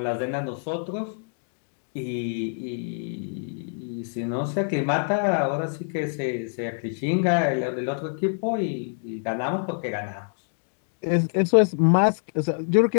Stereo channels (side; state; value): right; silent; digital silence